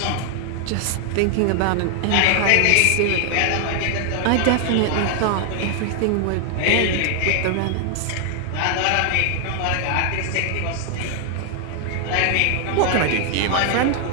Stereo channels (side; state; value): both; different; correlation 0.00